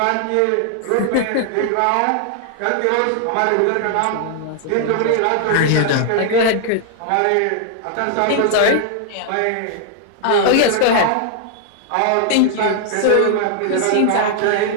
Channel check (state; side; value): different; both; correlation 0.00